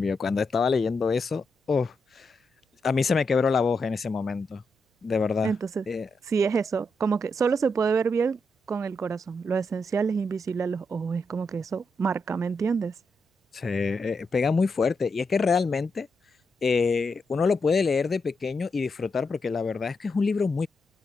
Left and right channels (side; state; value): both; normal; correlation 0.83